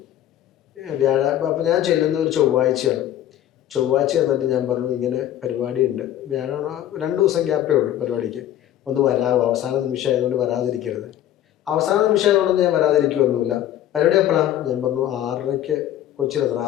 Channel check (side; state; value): right; quieter; 12.0 dB